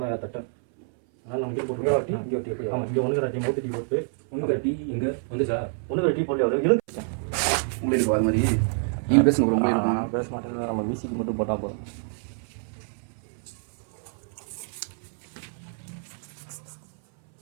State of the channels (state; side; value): silent; left; 59 dB below the other